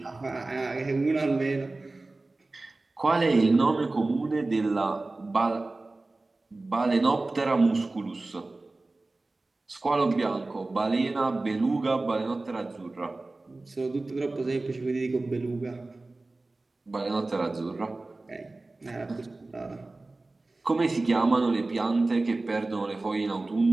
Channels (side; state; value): left; quieter; 3.2 dB